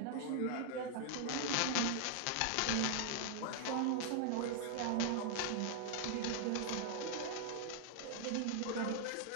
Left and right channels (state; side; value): different; both; correlation -0.01